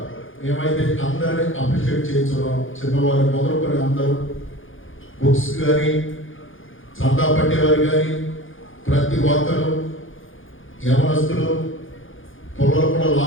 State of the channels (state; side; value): late; right; 0.58 ms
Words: మేమైతే అందరినీ అప్రిషియేట్ చేయించున్నాం. చిన్నవారు మొదలుకొని అందరూ బుక్స్ కానీ, చందా పట్టేవారు కానీ, ప్రతి ఒక్కరు యవనస్తులు పొలాలు కూడా